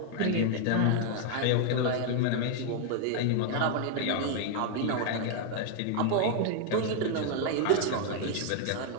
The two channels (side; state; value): both; different; correlation 0.00